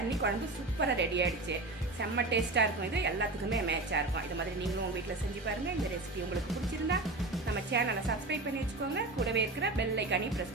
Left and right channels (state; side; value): quieter; left; 3.0 dB